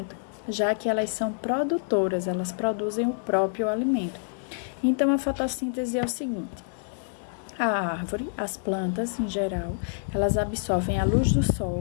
já que elas são produtoras, elas produzem o próprio alimento. Então, a fotossíntese é o seguinte: a árvore, as plantas em geral, elas absorvem a luz do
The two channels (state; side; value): silent; right; digital silence